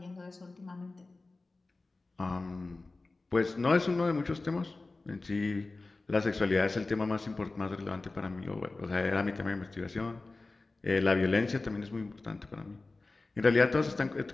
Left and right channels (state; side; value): quieter; right; 3.4 dB